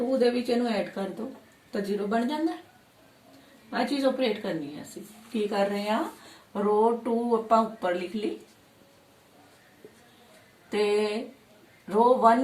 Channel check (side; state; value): both; identical; correlation 1.00